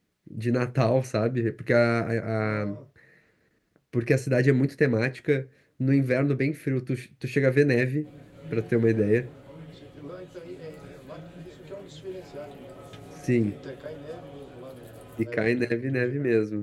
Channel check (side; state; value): both; identical; correlation 1.00